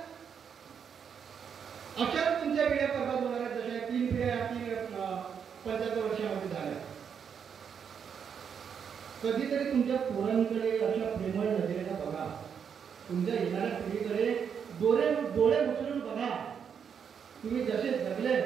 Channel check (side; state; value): left; quieter; 7.3 dB